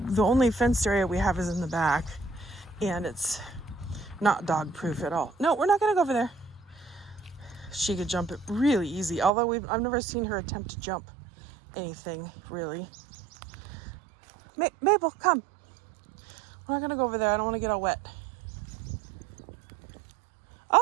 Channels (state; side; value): drops out; left; at 9.3 s